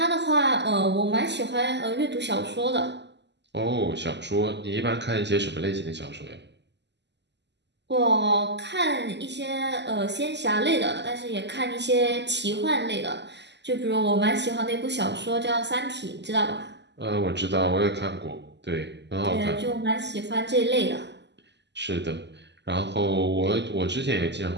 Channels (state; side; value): late; left; 0.50 ms